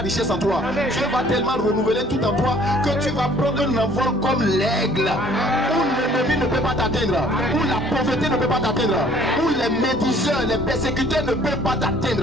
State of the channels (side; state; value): both; normal; correlation 0.56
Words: en toi. Dieu va tellement renouveler tout en toi que tu vas prendre un envol comme l'aigle. Où l'ennemi ne peut pas t'atteindre. Où la pauvreté ne peut pas t'atteindre. Où les médiseurs, les persécuteurs ne peuvent pas